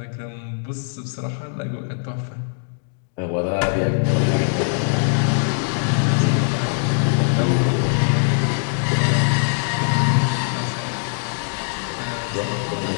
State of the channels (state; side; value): silent; right; digital silence